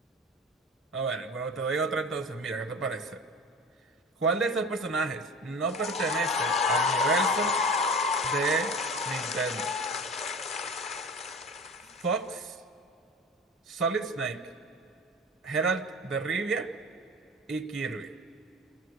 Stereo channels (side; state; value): both; normal; correlation 0.35